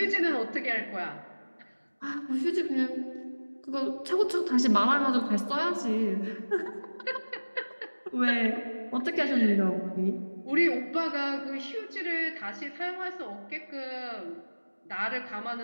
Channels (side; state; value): both; inverted; correlation -1.00